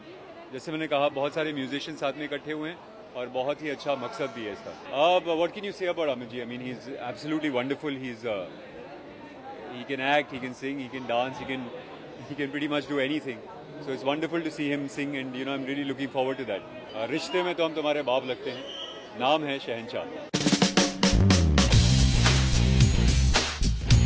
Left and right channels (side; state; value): both; identical; correlation 1.00